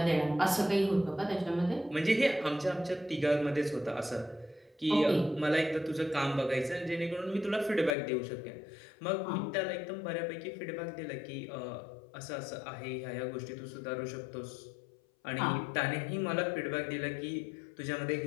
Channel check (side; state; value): right; drops out; at 8.0 s